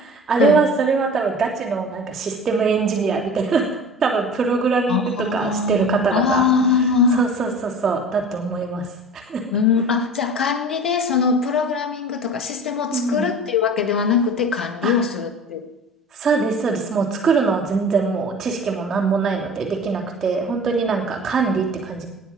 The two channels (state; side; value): normal; both; correlation 0.39